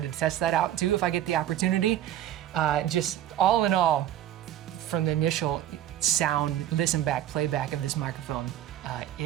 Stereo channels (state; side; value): quieter; left; 11.9 dB